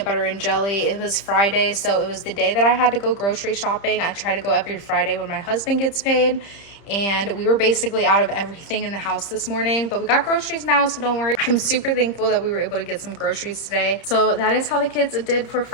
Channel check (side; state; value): right; late; 31 ms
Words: butter and jelly. It was Friday, so it was the day that I had to go grocery shopping. I try to go every Friday when my husband gets paid. And we were basically out of everything in the house this morning, but we got groceries now, so don't worry. I'm super thankful that we were able to get some groceries today. So that is how the kids did for